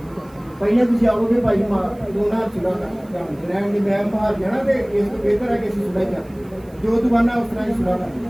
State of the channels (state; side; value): noise; right; hiss, 30 dB below the sound